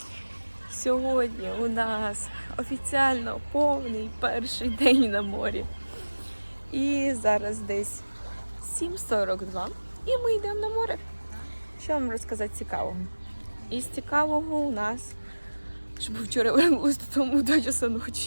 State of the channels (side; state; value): both; inverted; correlation -1.00